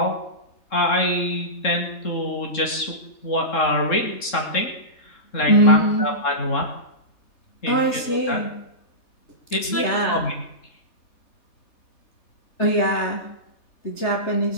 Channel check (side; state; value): right; late; 3.7 ms